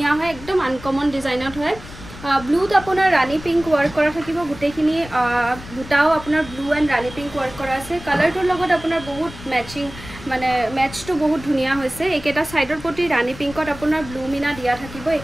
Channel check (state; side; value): noise; left; rumble, 15 dB below the sound